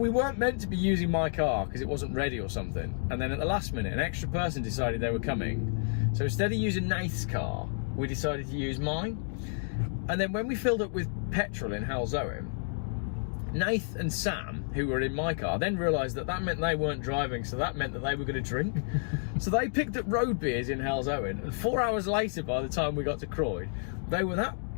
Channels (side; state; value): right; silent; digital silence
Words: meant to be using my car because it wasn't ready or something. And then at the last minute, an extra person decided they were coming. So instead of using Nath's car, we decided to use mine. And then when we filled up with petrol in Halzowen, Nath and Sam, who were in my car, then realised that meant they weren't driving, so that meant that they were going to drink. So they picked up road beers in Halzowen, and 4 hours later, by the time we got to Croyd, they were that